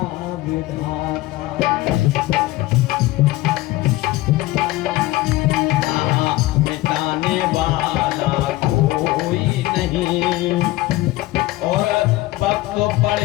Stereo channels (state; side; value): quieter; right; 17.8 dB